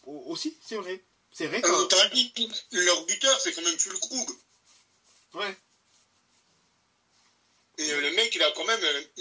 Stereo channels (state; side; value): identical; both; correlation 1.00